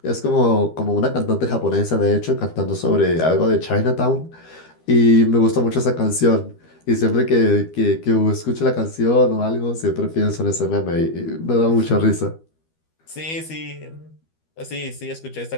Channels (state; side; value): late; right; 12 ms